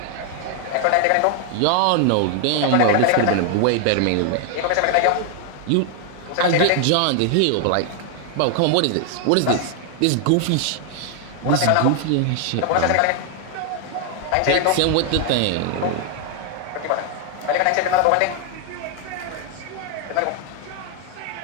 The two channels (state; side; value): different; both; correlation 0.00